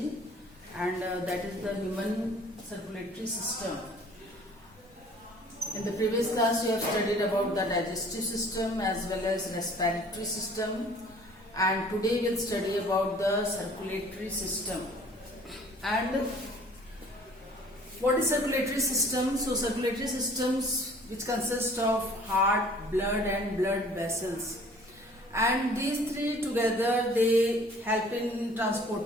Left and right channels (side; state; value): both; normal; correlation 0.52